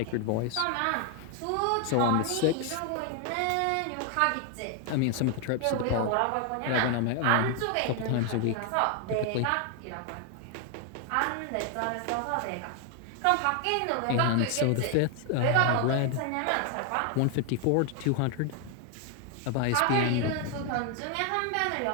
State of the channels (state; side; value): different; both; correlation 0.00